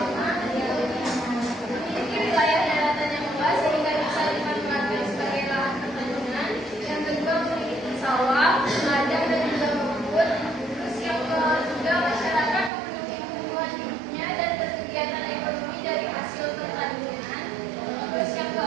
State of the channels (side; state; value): left; drops out; at 12.7 s